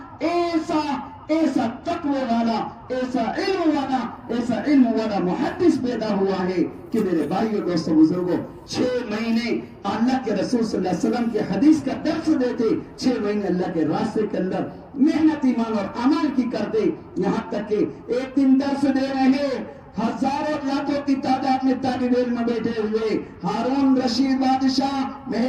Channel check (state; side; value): identical; both; correlation 1.00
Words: ایسا تقوی والا، ایسا علم والا محدث پیدا ہوا ہے کہ میرے بھائیوں دوستوں بزرگوں 6 مہینے اللہ کے رسول صلی اللہ علیہ وسلم کے حدیث کا درس دیتے. 6 مہینے اللہ کے راستے کے اندر محنت ایمان اور عمل کی کرتے. یہاں تک کہ ایک دن درس دے رہے، ہزاروں لاکھوں کی تعداد میں طالب علم بیٹھے ہوئے، ہارون رشید بادشاہ